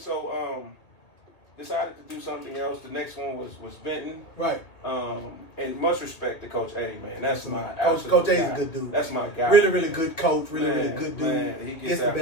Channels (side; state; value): right; late; 2.3 ms